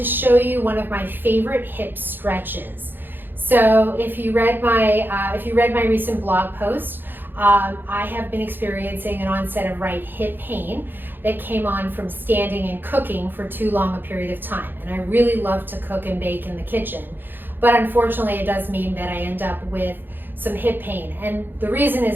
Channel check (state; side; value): late; left; 0.096 ms